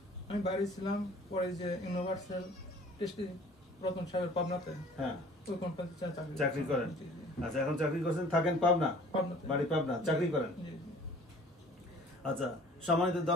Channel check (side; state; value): both; normal; correlation 0.50